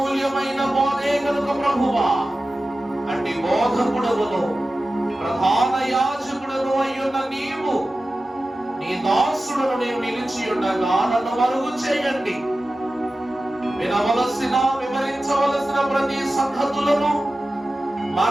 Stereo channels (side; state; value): both; normal; correlation 0.94